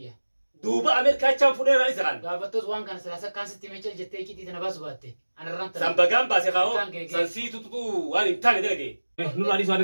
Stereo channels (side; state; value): both; inverted; correlation -1.00